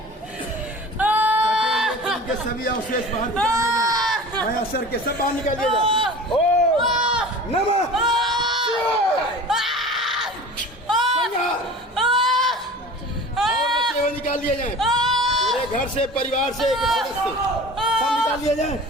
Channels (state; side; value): normal; both; correlation 0.39